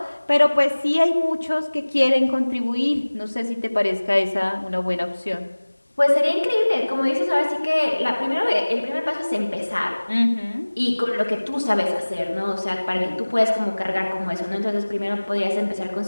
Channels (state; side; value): inverted; both; correlation -1.00